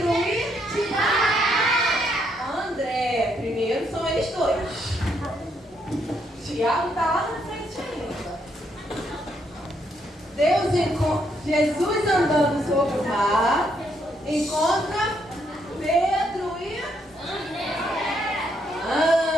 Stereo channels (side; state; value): both; normal; correlation 0.74